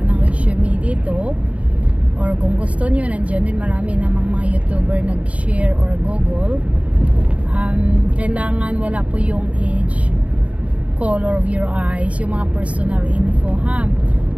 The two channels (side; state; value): left; late; 0.066 ms